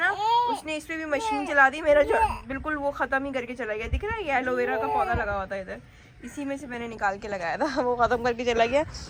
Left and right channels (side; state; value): both; identical; correlation 1.00